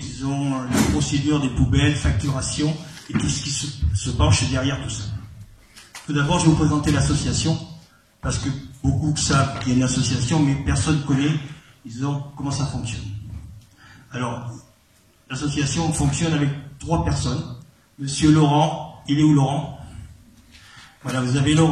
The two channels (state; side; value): identical; both; correlation 1.00